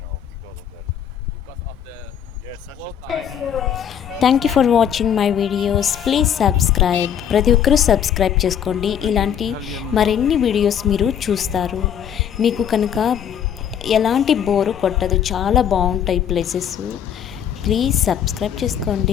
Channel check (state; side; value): quieter; right; 8.9 dB